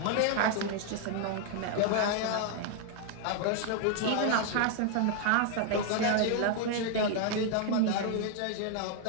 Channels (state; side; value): different; both; correlation 0.00